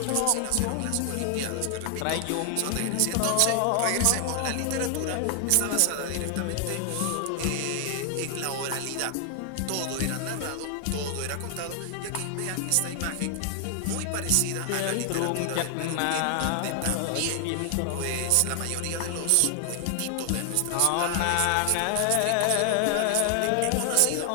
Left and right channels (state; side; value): different; both; correlation 0.00